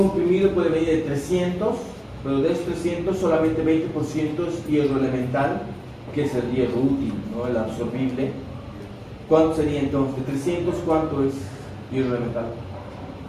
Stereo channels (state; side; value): identical; both; correlation 1.00